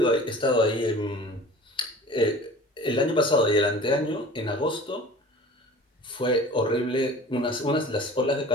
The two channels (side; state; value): both; normal; correlation 0.42